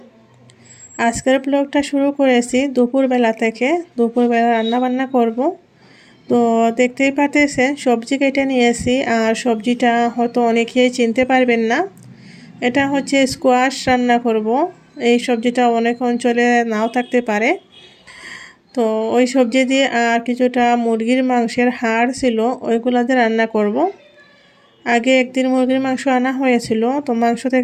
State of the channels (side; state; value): both; identical; correlation 1.00